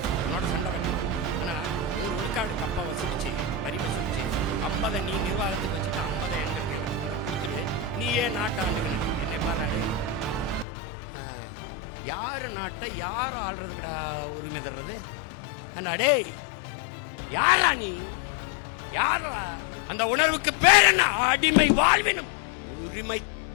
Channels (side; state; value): right; drops out; at 10.7 s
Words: உன்னோட சண்டை வேணும். ஆனா 100 விழுக்காடு கப்பா வசூலிச்சு வரி வசூலிச்சு 50 நீ நிர்வாகத்துக்கு வச்சுட்டு 50 எங்களுக்கு எனக்கு கொடுத்துரு, நீ ஏன் நாட்டை ஆண்டுக்குன்னு என்னை பாராடு. யாரு நாட்டை யார் ஆள்றதுடா உரிமை தர்றது? அடே யாரா நீ? யாரா? அந்த உணர்வுக்கு பேர் என்ன? அடிமை வாழ்வினும் உரிமை